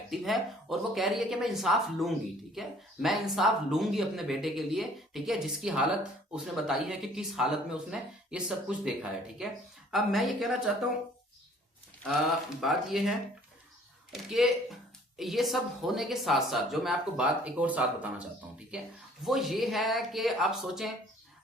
एक्टिव है, और वो कह रही है कि मैं इंसाफ लूंगी। ठीक है। मैं इंसाफ लूंगी अपने बेटे के लिए। ठीक है। जिसकी हालत उसने बताई है कि किस हालत में उसने ये सब कुछ देखा है। ठीक है। अब मैं ये कहना चाहता हूं, बात ये है कि ये सब होने के साथ साथ जो मैं आपको बात एक और साथ बताना चाहता हूं, ठीक है, वो ये है कि आप सोचें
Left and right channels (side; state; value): both; normal; correlation 0.56